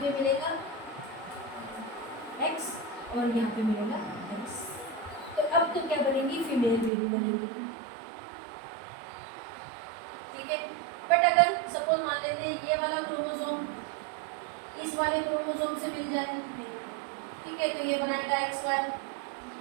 पे मिलेगा X और यहाँ पे मिलेगा X। तो अब तो क्या बनेगी? फीमेल बेबी बनेगी। ठीक है। बट अगर सपोज मान लेते हैं ये वाला क्रोमोसोम इस वाले क्रोमोसोम से मिल जाए, ठीक है, तो ये बनेगा XY,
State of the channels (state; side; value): drops out; left; at 6.9 s